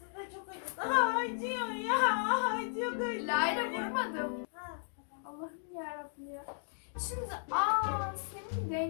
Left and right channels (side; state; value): right; silent; digital silence